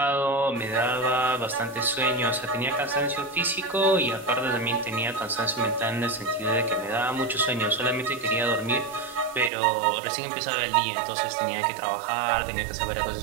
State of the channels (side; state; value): left; drops out; at 9.5 s